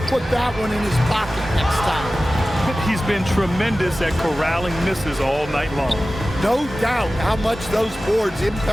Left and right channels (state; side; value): normal; both; correlation 0.96